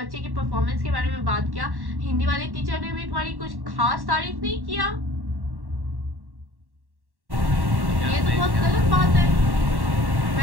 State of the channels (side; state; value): left; late; 1.1 ms